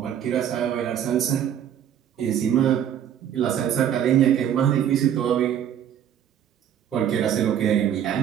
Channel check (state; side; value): quieter; left; 9.7 dB